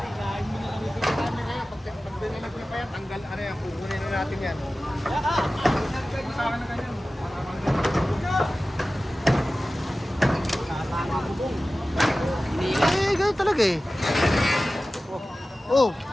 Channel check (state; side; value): normal; both; correlation 0.96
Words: mo na lang yung camera ngayon. Pag dinilag niyo pa yan, Tatanggal, ano yan, kukunin na natin yan. Eh, ganun talaga eh. Oh,